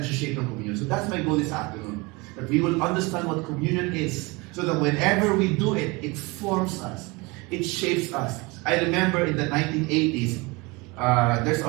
nasa-shape ng communion. So that's my goal this afternoon, that we will understand what communion is, so that whenever we do it, it forms us, it shapes us. I remember in the 1980s, there's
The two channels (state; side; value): quieter; left; 24.9 dB